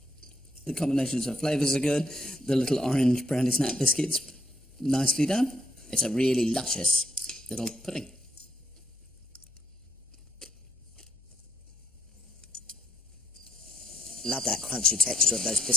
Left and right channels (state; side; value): normal; both; correlation 0.74